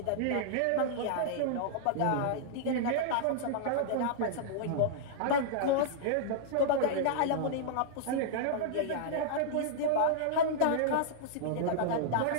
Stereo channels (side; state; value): both; different; correlation -0.02